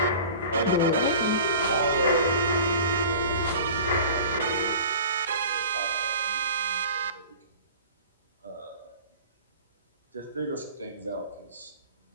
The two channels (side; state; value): both; inverted; correlation -0.41